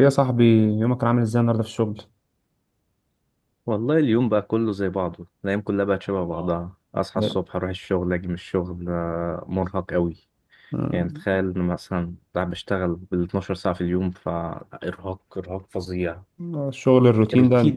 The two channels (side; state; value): both; identical; correlation 1.00